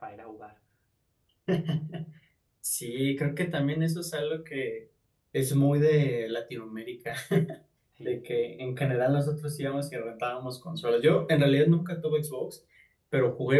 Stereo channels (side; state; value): both; identical; correlation 1.00